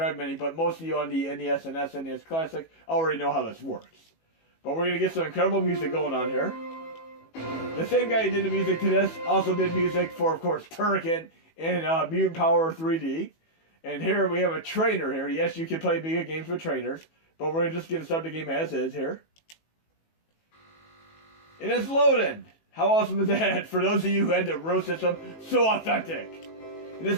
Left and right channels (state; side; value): late; right; 18 ms